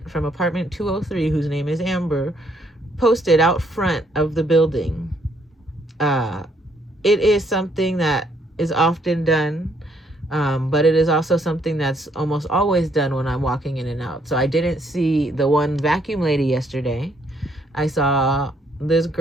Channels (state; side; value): normal; both; correlation 0.70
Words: from apartment 203, whose name is Amber, posted out front of the building. It is something that is often done, but it is also something that's almost always done when I'm walking in and out. So I didn't see the one vacuum lady yesterday. I saw this